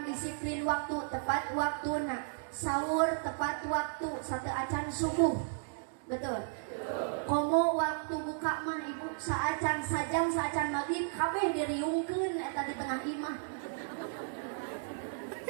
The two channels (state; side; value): silent; left; digital silence